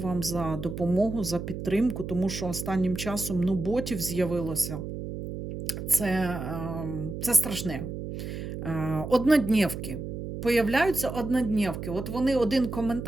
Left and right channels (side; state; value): right; noise; hum, 7 dB below the sound